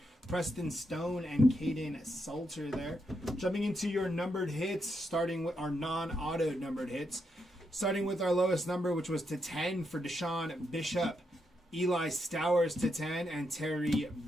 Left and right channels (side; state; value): both; normal; correlation 0.81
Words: Preston Stone, and Caden Salter there. Jumping into your numbered hits, starting with our non-auto numbered hits. Starting with our lowest number, which was to 10 for Deshaun Bishop, Eli Stowers to 10, and Terry